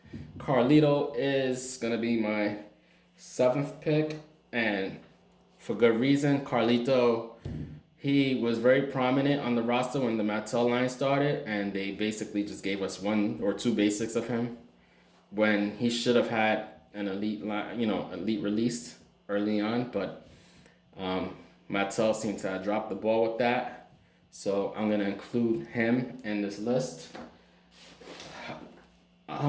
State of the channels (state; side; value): identical; both; correlation 1.00